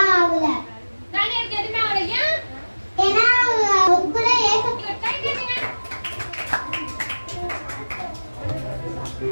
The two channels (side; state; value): both; inverted; correlation -1.00